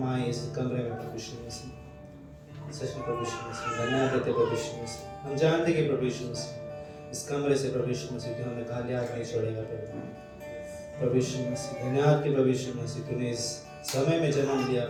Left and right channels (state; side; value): identical; both; correlation 1.00